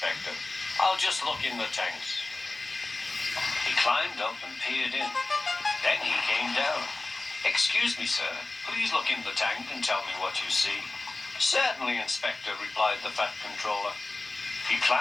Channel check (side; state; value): right; quieter; 3.1 dB